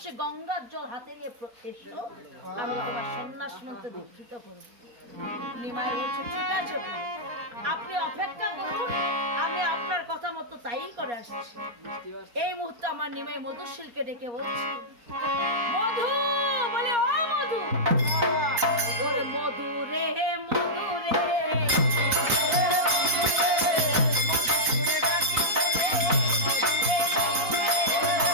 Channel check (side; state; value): left; late; 4.2 ms